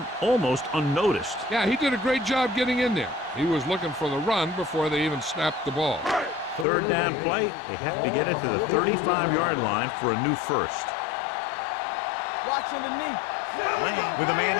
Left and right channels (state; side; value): drops out; right; at 6.7 s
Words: almost unnoticed. Yeah, he did a great job getting in there. He was looking for the run before they even snapped the ball. Third down play. They have to get it to the 35-yard line for a new first. Watch underneath. Lane with a man